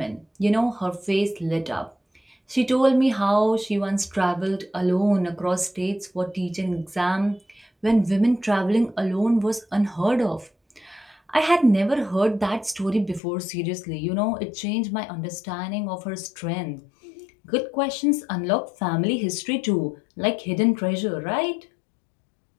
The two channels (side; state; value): right; drops out; at 13.2 s